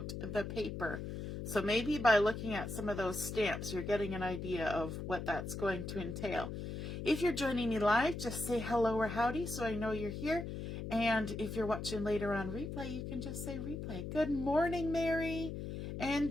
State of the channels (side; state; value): left; noise; hum, 6 dB below the sound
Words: the Paper. So maybe by looking at some of those stamps, you're getting an idea of what that's going to entail. If you're joining me live, just say hello or howdy so I know you're here. And if you're watching later on replay, you can just say replay. Good morning, Mary. And